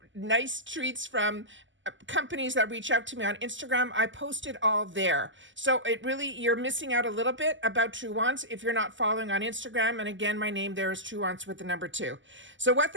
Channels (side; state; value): left; late; 0.55 ms